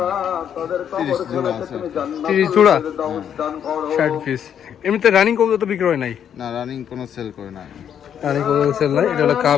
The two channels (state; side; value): quieter; right; 8.8 dB